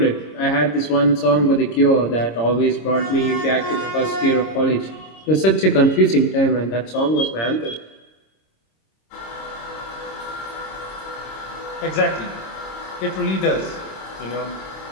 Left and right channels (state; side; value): late; right; 26 ms